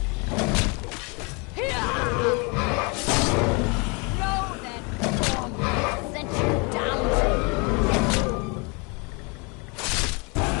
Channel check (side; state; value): right; quieter; 31.1 dB